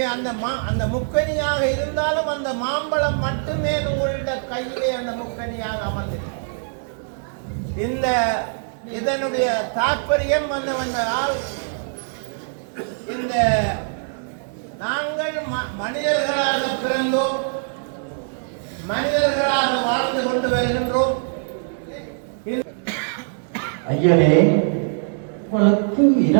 அந்த முக்கனியாக இருந்தாலும் அந்த மாம்பழம் மட்டுமே உங்களுடைய கையிலே அந்த முக்கனியாக அமர்ந்திருக்கிறது. இதனுடைய தாற்பயம் என்னவென்றால், இந்த நாங்கள் மனிதர்களாக பிறந்தோம், மனிதர்களாக வாழ்ந்து கொண்டு வருகின்றோம். ஐயனே, உங்களுக்கு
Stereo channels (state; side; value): silent; left; digital silence